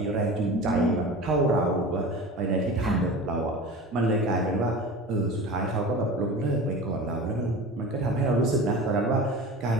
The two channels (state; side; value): normal; both; correlation 0.34